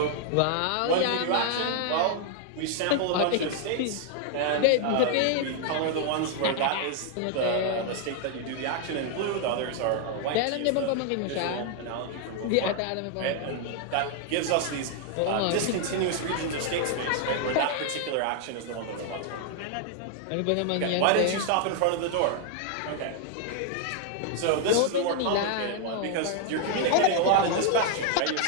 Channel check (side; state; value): both; different; correlation 0.00